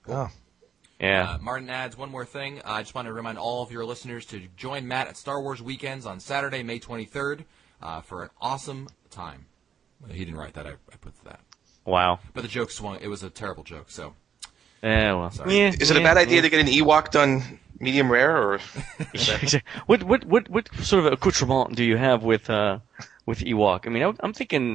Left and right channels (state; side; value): quieter; left; 8.1 dB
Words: Oh. Yeah. Martin adds one more thing. I just want to remind all of your listeners to join Matt at Star Wars Weekends on Saturday, May 23rd, for an awesome time. He didn't write that. I put that. Wow. But the joke swung. It was a terrible joke, so. Yeah, well. Sorry. Yeah, Is it a bad idea to get an Ewok done medium rare, or? What sort of accoutrement do you have with Ewok? I mean, I'm